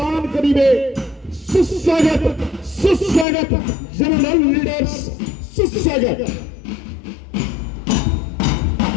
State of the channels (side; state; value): right; drops out; at 3.2 s